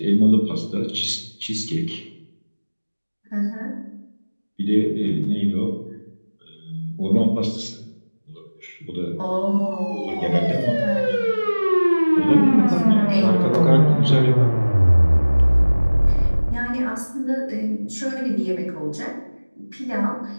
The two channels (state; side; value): inverted; both; correlation -1.00